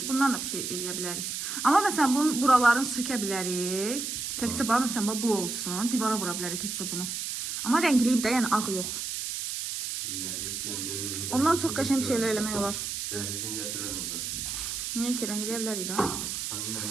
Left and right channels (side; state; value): right; noise; hiss, 4 dB below the sound